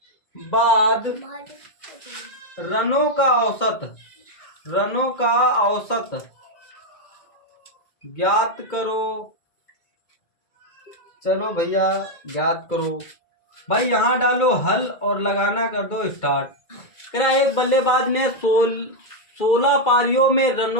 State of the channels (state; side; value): late; right; 2.1 ms